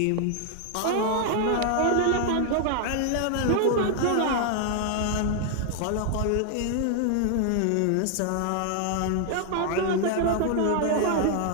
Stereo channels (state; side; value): different; both; correlation 0.00